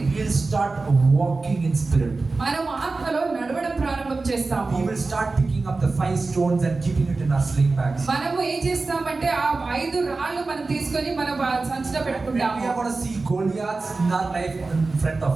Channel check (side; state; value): left; quieter; 3.7 dB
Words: will start walking in spirit. మనం ఆత్మలో నడవడం ప్రారంభం చేస్తాము. We will start picking up the 5 stones and keeping it in our sling bags. మనము ఏం చేస్తామంటే ఆ 5 రాళ్ళు మనం తీసుకొని మన సంచిలో పెట్టుకుంటాము. We are going to see Goliaths in our life in front of